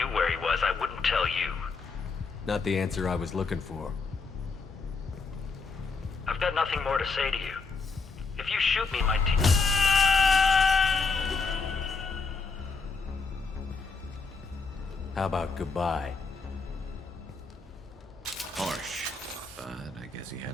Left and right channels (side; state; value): right; quieter; 4.4 dB